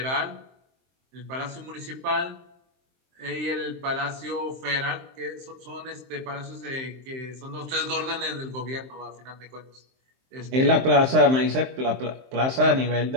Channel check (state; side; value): late; left; 23 ms